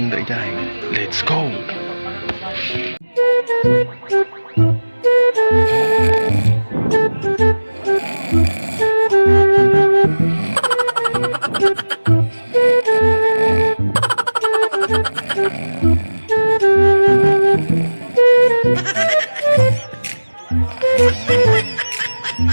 da Idiay. Let's go!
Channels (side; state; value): both; inverted; correlation -1.00